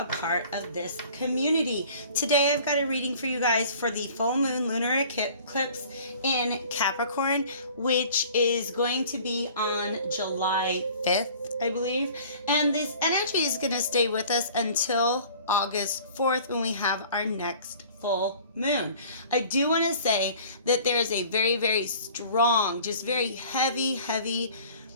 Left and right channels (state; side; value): inverted; both; correlation -0.49